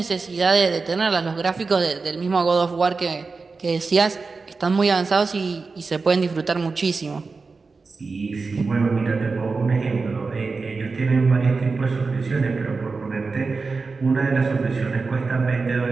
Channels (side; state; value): left; quieter; 4.3 dB